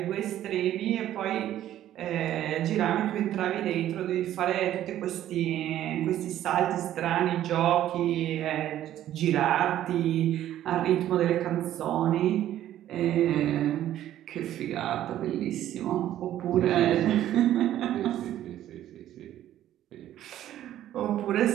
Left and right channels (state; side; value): quieter; left; 12.4 dB